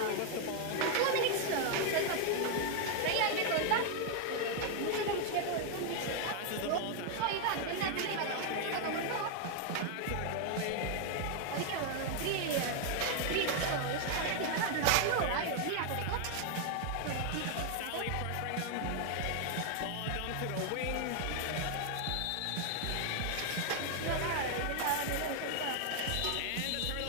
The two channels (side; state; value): both; different; correlation 0.00